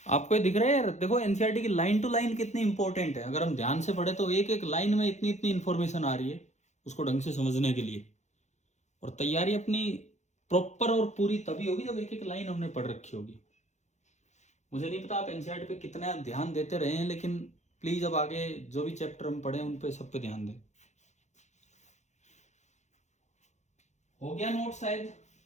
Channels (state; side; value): late; right; 0.34 ms